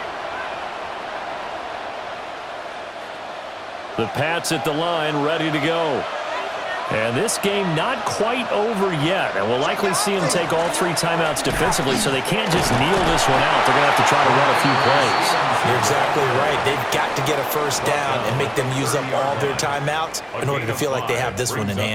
The Pats at the line, ready to go. And this game not quite over yet. And we'll likely see them take all 3 timeouts defensively, so they can't just kneel this one out. They're going to have to try to run a few plays. You're exactly right. They've got to get a first down and make them use up all their timeouts in order to feel like they have this one in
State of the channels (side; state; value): both; identical; correlation 1.00